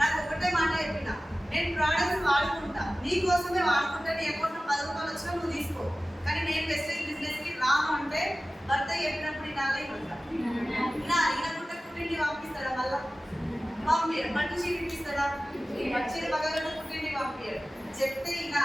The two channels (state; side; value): normal; both; correlation 0.96